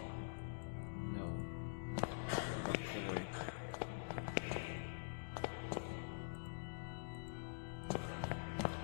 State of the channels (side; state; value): right; silent; digital silence